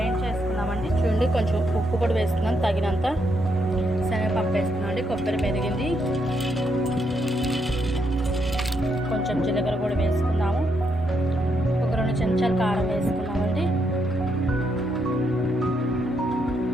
చేసుకున్నామండి. చూడండి, కొంచెం ఉప్పు కూడా వేస్తున్నాం తగినంత. శనగపప్పు వేస్తున్నాం అండి. కొబ్బరి మెదిగింది, కొంచెం జీలకర్ర కూడా వేసుకున్నాము. ఒక 2 చెంచాలు కారం వేసుకున్నామండి.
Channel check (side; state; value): both; normal; correlation 0.78